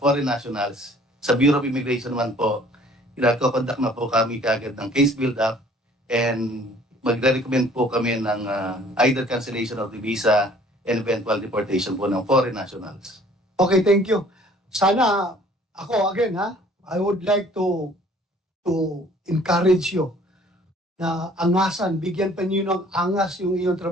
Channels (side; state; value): both; normal; correlation 0.55